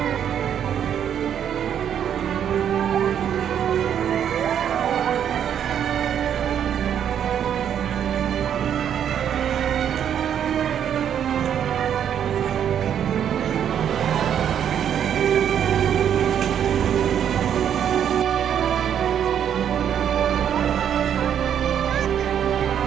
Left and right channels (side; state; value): left; quieter; 9.1 dB